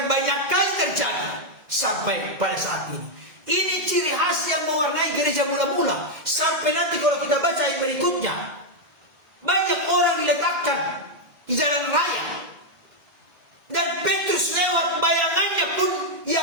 banyak kali terjadi sampai pada saat ini. Ini ciri khas yang mewarnai gereja mula-mula. Sampai nanti kalau kita baca ayat berikutnya, banyak orang diletakkan di jalan raya, dan Petrus lewat bayangannya pun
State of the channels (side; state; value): left; late; 2.1 ms